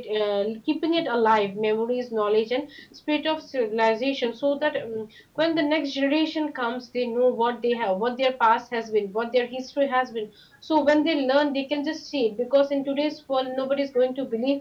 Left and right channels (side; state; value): both; identical; correlation 1.00